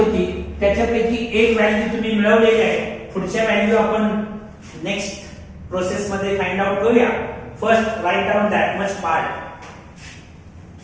त्याच्यापैकी एक व्हॅल्यू तुम्ही मिळवलेली आहे. पुढच्या व्हॅल्यू आपण नेक्स्ट प्रोसेस मध्ये फाइंड आउट करूया. First right down that much part.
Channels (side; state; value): both; identical; correlation 1.00